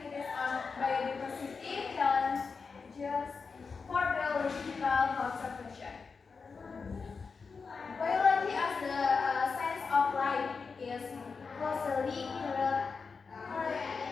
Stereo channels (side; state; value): right; quieter; 5.0 dB